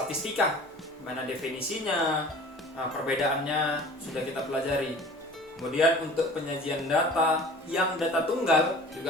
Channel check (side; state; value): both; normal; correlation 0.44